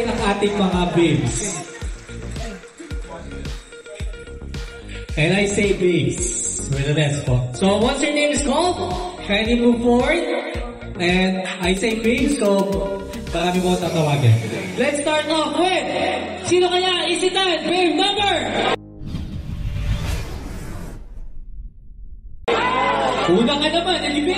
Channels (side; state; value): both; identical; correlation 1.00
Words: ang ating mga babes. And I say babes with an S po. So once your name is called, kindly move forward. And I say babes, so marami po tatawagin. Let's start off with, sino kaya isitan? Babe number! Una ka naman, and